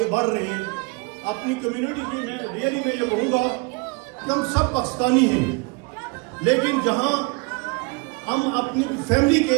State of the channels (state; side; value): quieter; left; 29.5 dB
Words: بڑھ رہے ہیں اپنی کمیونٹی کی۔ میں ریئلی میں یہ کہوں گا کہ ہم سب پاکستانی ہیں، لیکن جہاں ہم اپنی فیملی کے